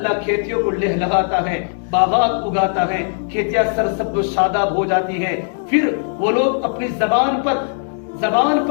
کھیتیوں کو لہلہاتا ہے، باغات اگاتا ہے، کھیتیاں سرسبز و شاداب ہو جاتی ہیں. پھر وہ لوگ اپنی زبان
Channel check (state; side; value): silent; right; 67 dB below the other